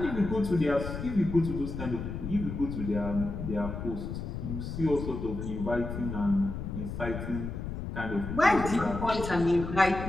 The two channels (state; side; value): noise; left; rumble, 6 dB below the sound